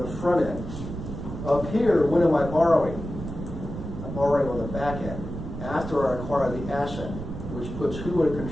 the front end. Up here, when am I borrowing? I'm borrowing on the back end after I acquire the asset, which puts who in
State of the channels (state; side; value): noise; right; rumble, 8 dB below the sound